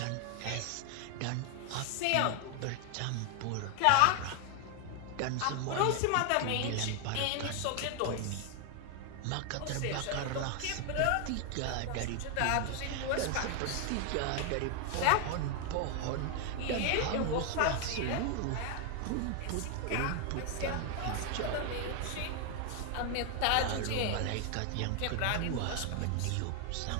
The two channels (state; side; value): different; both; correlation 0.00